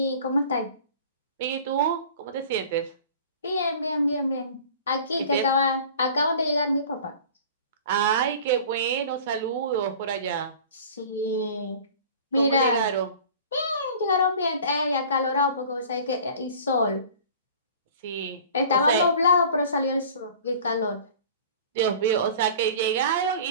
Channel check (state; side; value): inverted; both; correlation -0.44